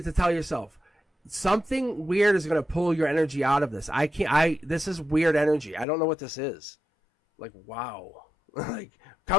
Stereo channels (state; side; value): drops out; right; at 5.9 s